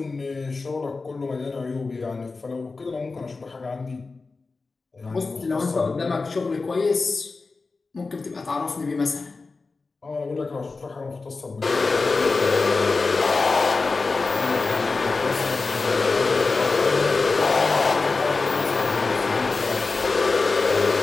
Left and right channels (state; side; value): quieter; right; 4.0 dB